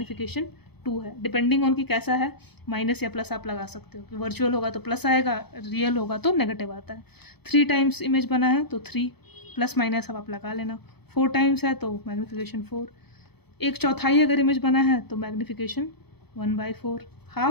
2 है, डिपेंडिंग ऑन कि कैसा है, माइनस या प्लस आप लगा सकते हो, कि वर्चुअल होगा तो प्लस आएगा, रियल होगा तो नेगेटिव आता है। 3 टाइम्स इमेज बना है तो 3 प्लस माइनस अब आप लगा लेना, 4 टाइम्स है तो मैग्नीफिकेशन 4, एक चौथाई अगर इमेज बना है तो मैग्नीफिकेशन 1/4,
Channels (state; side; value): late; right; 0.98 ms